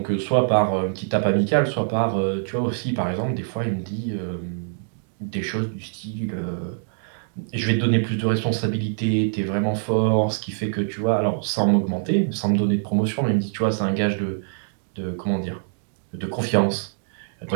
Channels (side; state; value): left; silent; digital silence